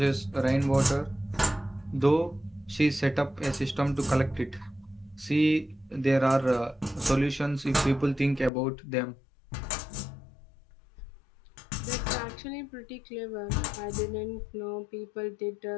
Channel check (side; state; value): right; drops out; at 8.5 s